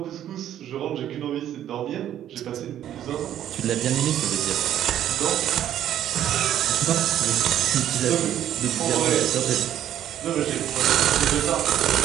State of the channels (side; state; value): left; quieter; 11.1 dB